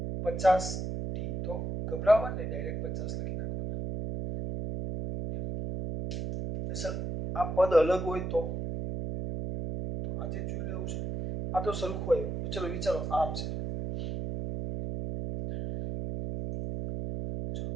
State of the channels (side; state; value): right; noise; hum, 4 dB below the sound